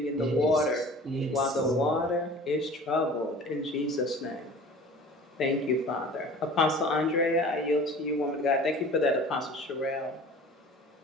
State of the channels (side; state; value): both; normal; correlation 0.43